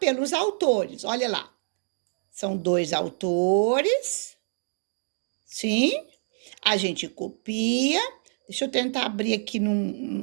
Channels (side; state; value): left; silent; digital silence